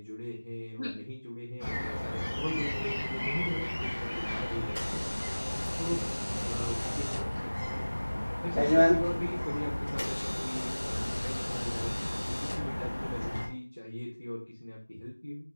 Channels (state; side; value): inverted; both; correlation -1.00